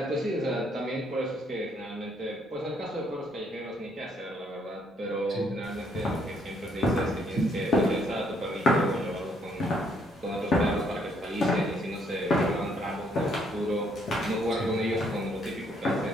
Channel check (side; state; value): both; normal; correlation 0.69